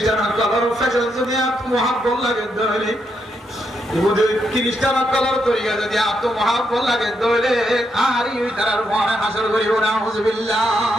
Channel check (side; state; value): both; normal; correlation 0.80